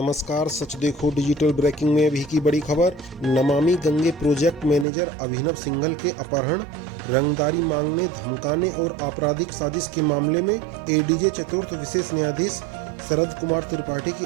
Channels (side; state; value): left; drops out; at 4.9 s